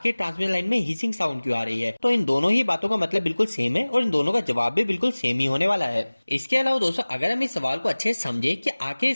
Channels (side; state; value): both; inverted; correlation -1.00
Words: ट्रांसमिशन लाइन में हिसिंग साउंड क्यों आ रही है। तो इन दोनों ही बातों का मतलब बिल्कुल सेम है और इन दोनों का जवाब भी बिल्कुल सेम ही होने वाला है। इसके अलावा दोस्तों, अगर हम इस सवाल को अच्छे से समझे कि आखिर